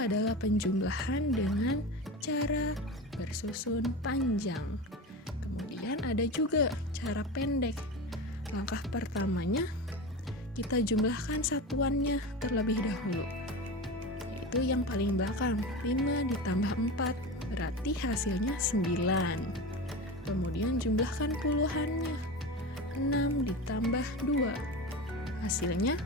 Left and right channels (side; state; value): both; normal; correlation 0.26